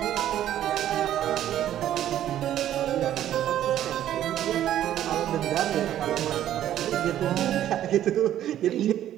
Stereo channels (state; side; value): quieter; left; 11.7 dB